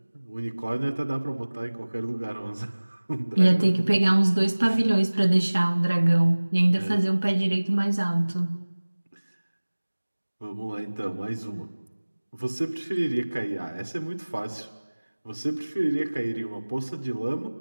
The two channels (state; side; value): inverted; both; correlation -1.00